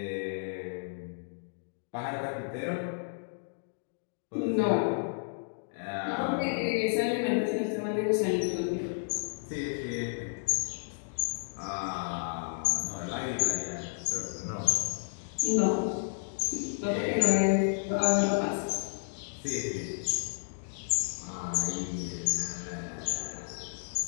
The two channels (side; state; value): right; silent; digital silence